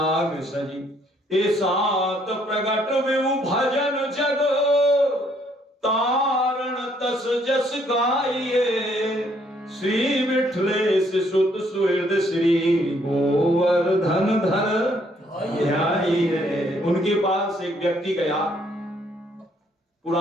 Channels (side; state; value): both; normal; correlation 0.67